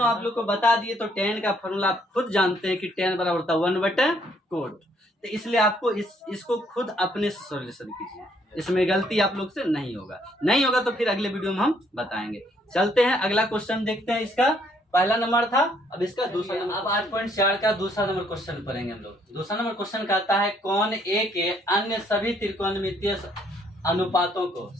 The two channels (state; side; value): normal; both; correlation 0.67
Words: आप लोग को बता दिए तो 10 का फॉर्मूला आप खुद जानते हैं कि 10 बराबर होता है 1/कोट। तो इसलिए आपको इसको खुद अपने से सॉल्यूशन कीजिए, इसमें गलती आप लोग से नहीं होगा तो फिर अगले वीडियो में हम बताएंगे। चलते हैं अगला क्वेश्चन देखते हैं इसका पहला नंबर था, अब इसका दूसरा नंबर। अब 8.4 का दूसरा नंबर क्वेश्चन पढ़ेंगे हम लोग। दूसरा नंबर क्वेश्चन कहता है कौन ए के अन्य सभी त्रिकोणमितीय अनुपातों को